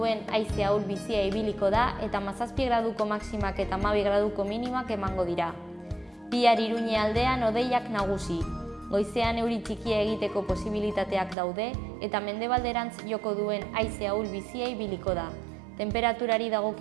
haize ahul bizia ibiliko da eta 17 graduko maximak eta 12 graduko minimak emango dira. Bihar Iruñe aldean hodeiak nagusi. Goizean euri txikia egiteko posibilitateak daude eta mendebalderantz joko duen haize ahul bizia ibiliko da. Temperaturari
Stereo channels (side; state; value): left; drops out; at 11.4 s